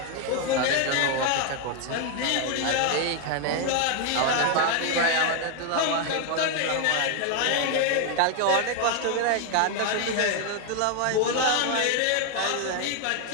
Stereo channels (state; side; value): different; both; correlation 0.01